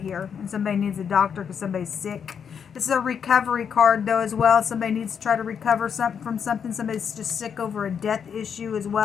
And somebody needs a doctor because somebody's sick. This is a recovery card, though, as well. Somebody needs to try to recover from something. Somebody's just sick over a death issue as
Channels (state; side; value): quieter; right; 7.3 dB